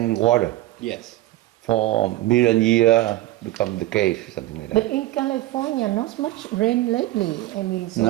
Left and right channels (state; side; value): quieter; left; 16.5 dB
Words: water. Yes. for million year become the cave, something like But that. in California, not much rain lately. I mean, so